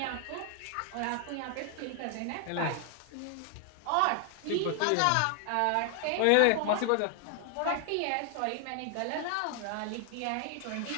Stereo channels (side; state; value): both; different; correlation 0.00